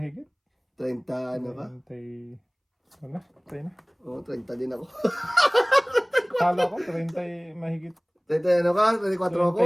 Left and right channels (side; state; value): both; identical; correlation 1.00